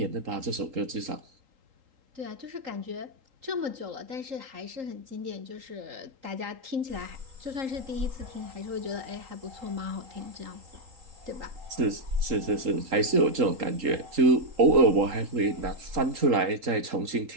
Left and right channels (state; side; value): late; left; 3.8 ms